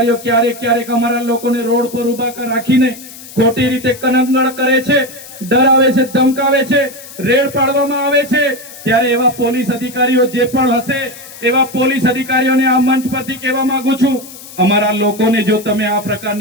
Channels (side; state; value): left; noise; hiss, 16 dB below the sound